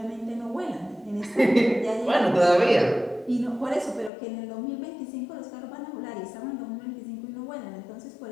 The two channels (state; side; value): drops out; right; at 4.1 s